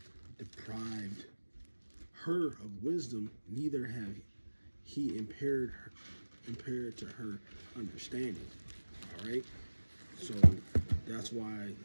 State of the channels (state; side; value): inverted; both; correlation -1.00